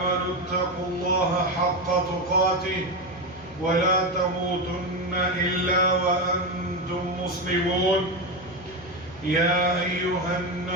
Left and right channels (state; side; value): noise; left; hum, 20 dB below the sound